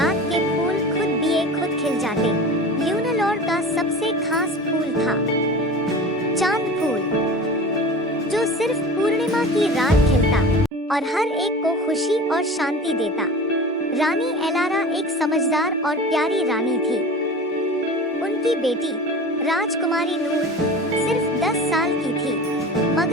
के फूल खुद खिल जाते। ल्यूनालोर का सबसे खास फूल था चांद फूल, जो सिर्फ पूर्णिमा की रात खिलता और हर एक को खुशी और शांति देता। रानी एलारा एक समझदार और प्यारी रानी थी। उनकी बेटी राजकुमारी नूर सिर्फ 10 साल की थी,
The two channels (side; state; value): both; normal; correlation 0.36